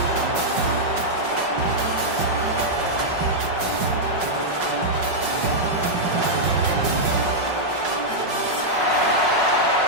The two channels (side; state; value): left; late; 5.4 ms